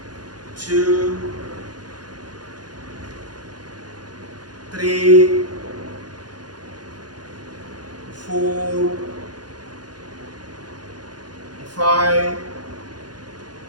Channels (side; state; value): left; late; 0.69 ms